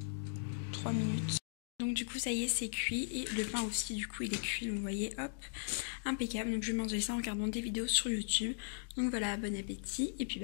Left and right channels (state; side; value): silent; right; digital silence